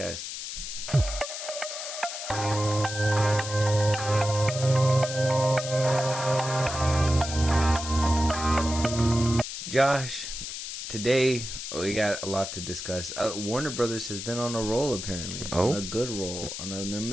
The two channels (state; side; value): noise; left; hiss, 7 dB below the sound